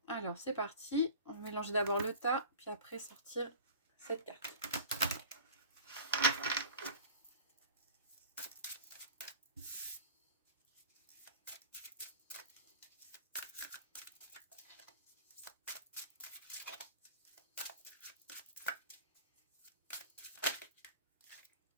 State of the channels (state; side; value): inverted; both; correlation -0.40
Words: Alors c'est parti. On mélange d'abord le tas, puis après sortir cette carte.